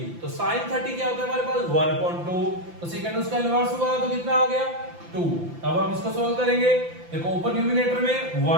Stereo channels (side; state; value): left; late; 5.9 ms